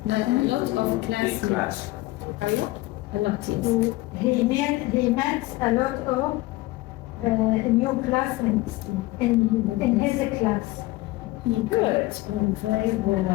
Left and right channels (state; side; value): quieter; right; 19.5 dB